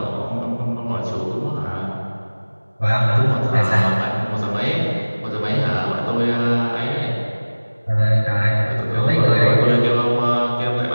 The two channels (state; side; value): inverted; both; correlation -1.00